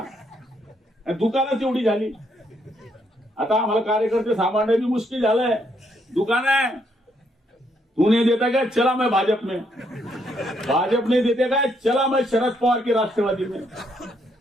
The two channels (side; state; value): both; normal; correlation 0.74